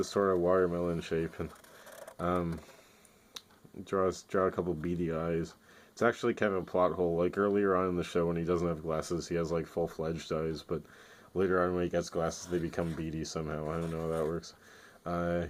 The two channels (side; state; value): both; identical; correlation 1.00